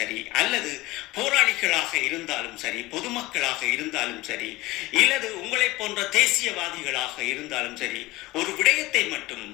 அல்லது போராளிகளாக இருந்தாலும் சரி, பொதுமக்களாக இருந்தாலும் சரி, இல்லது உங்களை போன்ற தேசியவாதிகளாக இருந்தாலும் சரி, ஒரு விடயத்தை மட்டும்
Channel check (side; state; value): right; quieter; 19.6 dB